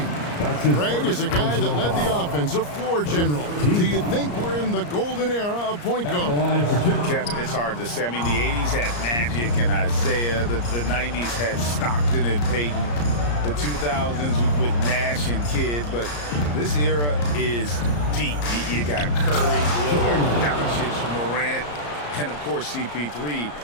Greg is a guy that led the offense, a floor general. Do you think we're in the golden era of point guard? Kevin, it's hard to say. I mean, the 80s had Magic and Isaiah. The 90s had Stockton and Peyton. The 2000s with Nash and Kidd. But this era is deep. You got Curry, Lillard, Doncic, Morant, and, of course, CP3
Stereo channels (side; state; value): right; late; 34 ms